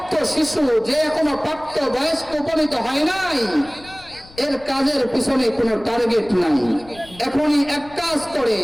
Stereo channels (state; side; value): noise; left; rumble, 22 dB below the sound